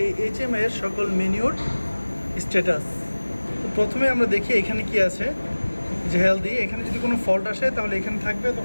এই এইচএমআই এর সকল মেনুর স্ট্যাটাস। তো প্রথমে আমরা দেখি এখানে কি আছে, যে হেলদি। এখানে যদি কোনো ফল্ট আসে তাহলে এখানে থাকবে,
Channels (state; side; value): inverted; both; correlation -1.00